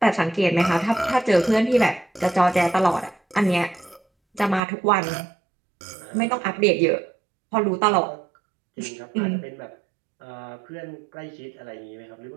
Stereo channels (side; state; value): left; drops out; at 4.6 s